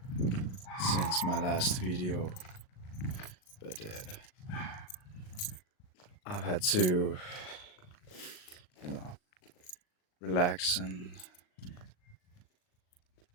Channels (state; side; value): late; right; 38 ms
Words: since my last video, but I've had to, you know, relax and